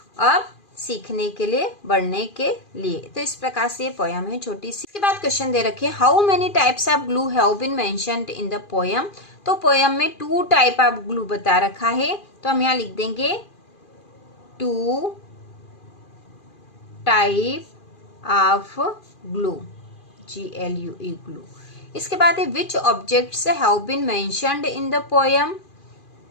अब सीखने के लिए, बढ़ने के लिए। तो इस प्रकार से ये पोयम है छोटी सी। इसके बाद क्वेश्चन दे रखे, how many types of glue have been mentioned in the poem. तो पोयम में 2 टाइप ऑफ ग्लू बता रखा है। तो हम यहाँ लिख देंगे 2 type of glue, GLUE, glue. इसके बाद है, which objects have been mentioned in the poem.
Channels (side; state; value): right; late; 2.4 ms